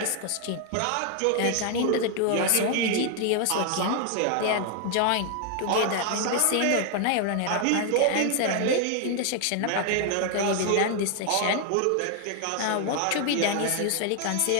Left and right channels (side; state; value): both; different; correlation 0.00